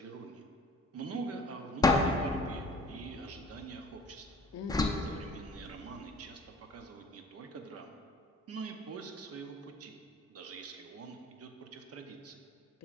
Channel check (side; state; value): both; normal; correlation 0.47